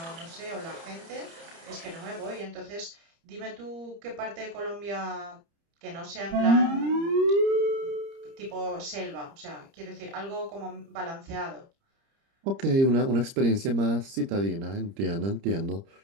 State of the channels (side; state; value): left; late; 30 ms